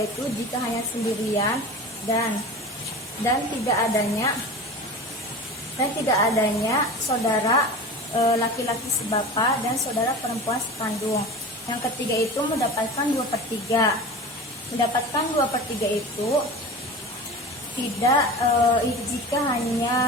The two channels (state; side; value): normal; both; correlation 0.33